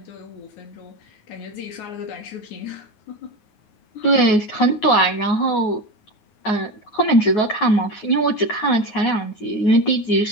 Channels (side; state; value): right; late; 9.5 ms